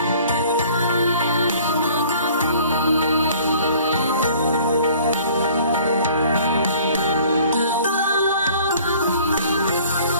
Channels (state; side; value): inverted; both; correlation -0.52